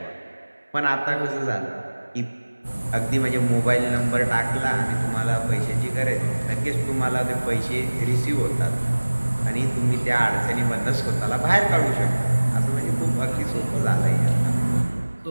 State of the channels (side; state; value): both; inverted; correlation -1.00